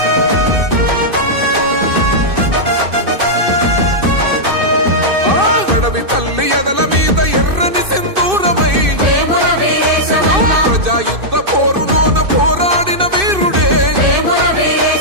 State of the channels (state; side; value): late; left; 2.6 ms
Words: అడవి తల్లి ఎదల మీద ఎర్రని సింధూరమై ప్రజాయుద్ధ పోరులోన పోరాడిన వీరుడే